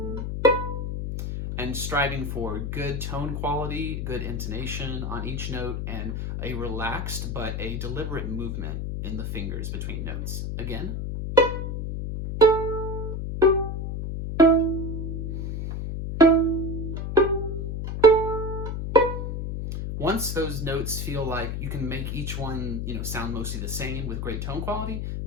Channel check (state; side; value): noise; left; hum, 3 dB below the sound